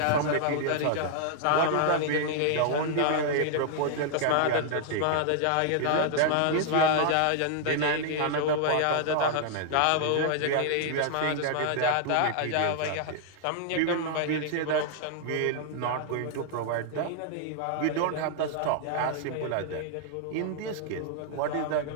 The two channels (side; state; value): both; different; correlation -0.01